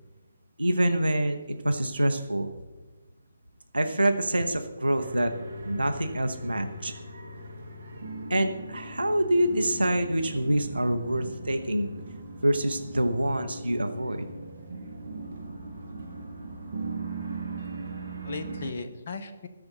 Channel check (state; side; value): inverted; both; correlation -0.92